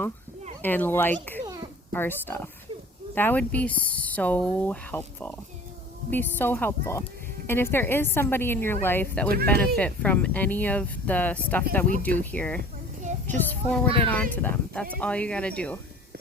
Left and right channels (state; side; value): normal; both; correlation 0.46